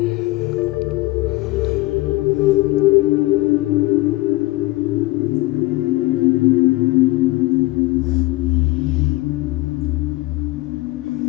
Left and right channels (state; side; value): quieter; right; 20.5 dB